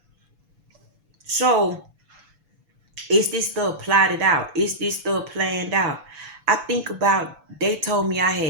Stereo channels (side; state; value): left; late; 7.0 ms